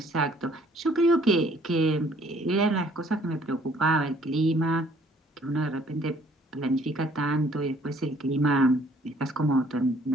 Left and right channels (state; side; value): normal; both; correlation 0.60